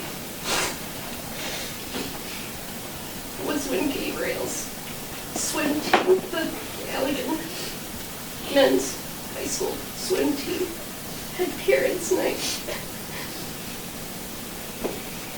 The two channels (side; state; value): both; identical; correlation 1.00